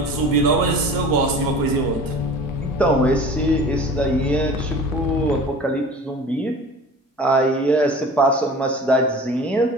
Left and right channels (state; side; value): normal; both; correlation 0.40